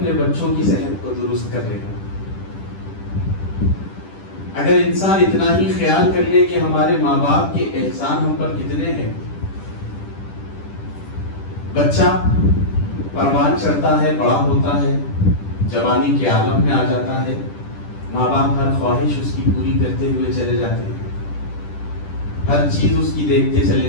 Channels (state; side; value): late; right; 10 ms